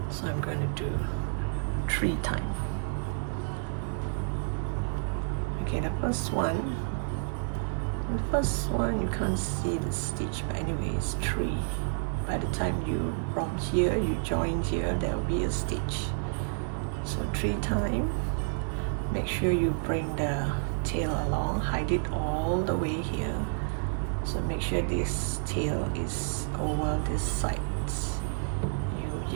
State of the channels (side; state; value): left; silent; 58 dB below the other